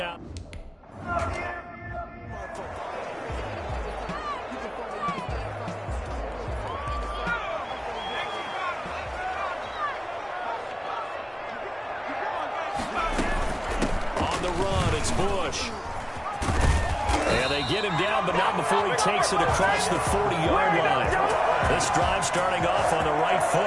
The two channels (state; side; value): identical; both; correlation 1.00